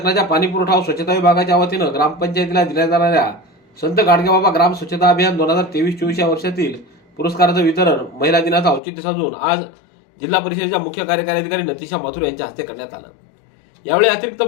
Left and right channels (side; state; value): right; drops out; at 8.8 s